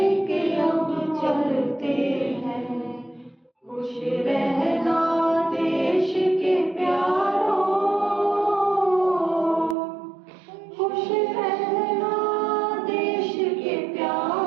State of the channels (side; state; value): left; drops out; at 9.8 s